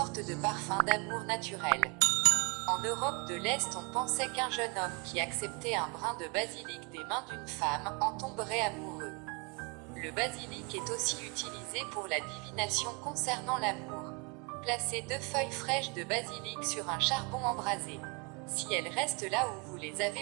de parfum d'amour naturel. En Europe de l'Est, on pensait qu'un jeune homme qui acceptait un brin de basilic des mains d'une femme en tomberait amoureux. Le basilic est aussi utilisé pour la divination concernant l'amour. Placez 2 feuilles fraîches de basilic sur un charbon embrasé. Si elles restent là où vous les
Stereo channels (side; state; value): left; quieter; 31.9 dB